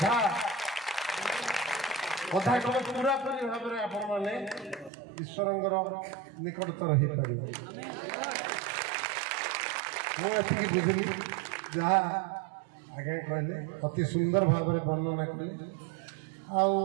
କଥା କଲେ ପୁରାପୁରି ଭାବରେ ଆପଣମାନେ ଈଶ୍ୱରଙ୍କର ନିକଟତର ହେଇପାରିବେ। ମୁଁ ଏତିକି ବୁଝିଲି ଯାହା ଆଜ୍ଞା କହିଲେ ଅତି ସୁନ୍ଦର ଭାବରେ ବର୍ଣ୍ଣନା କଲେ। ଆଉ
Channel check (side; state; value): left; drops out; at 4.9 s